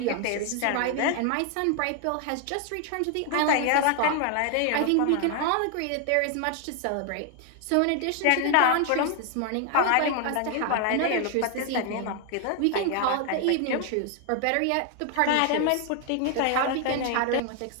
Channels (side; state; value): both; different; correlation 0.00